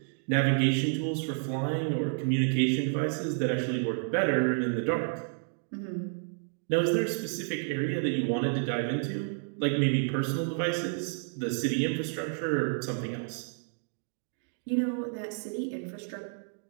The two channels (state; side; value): silent; left; digital silence